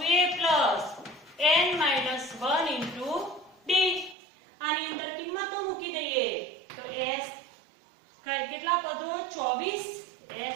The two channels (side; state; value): left; drops out; at 4.2 s